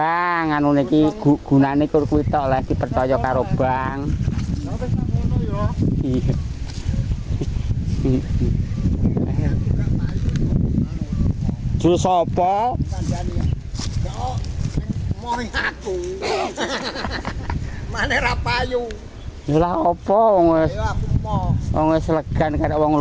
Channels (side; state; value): both; identical; correlation 1.00